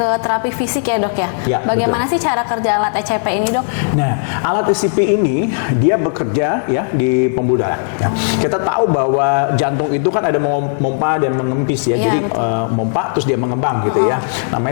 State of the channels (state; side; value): silent; right; digital silence